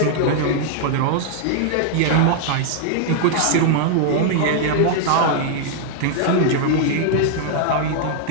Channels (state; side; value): different; both; correlation -0.01